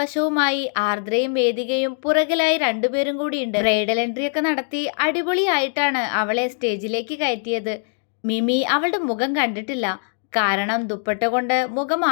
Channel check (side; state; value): right; silent; 64 dB below the other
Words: ആർദ്രയും വേദികയും പുറകിലായി രണ്ടുപേരും കൂടിയുണ്ട്. ബ്രൈഡൽ എൻട്രിയൊക്കെ നടത്തി അടിപൊളിയായിട്ടാണ് അവളെ സ്റ്റേജിലേക്ക് കയറ്റിയത്. മിമി അവളുടെ മുഖം കണ്ടിട്ടില്ല. കാരണം ദുപ്പട്ട കൊണ്ട് മുഖം